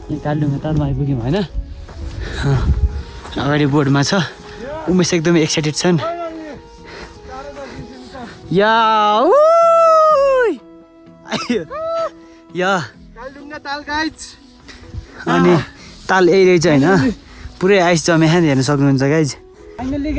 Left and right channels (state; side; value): identical; both; correlation 1.00